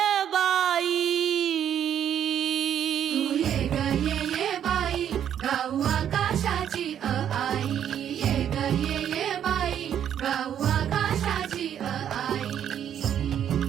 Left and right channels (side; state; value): left; quieter; 9.6 dB